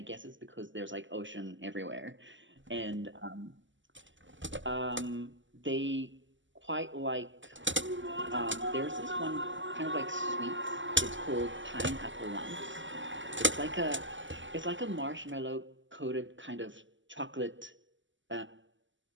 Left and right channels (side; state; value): left; late; 0.55 ms